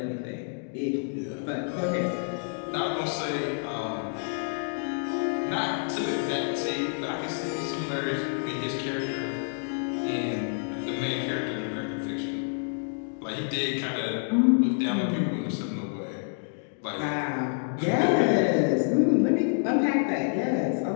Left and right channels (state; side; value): silent; right; 59 dB below the other